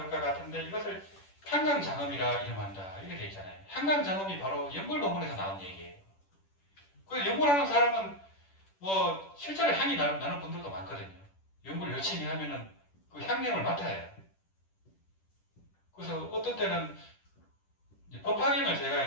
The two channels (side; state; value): right; late; 10 ms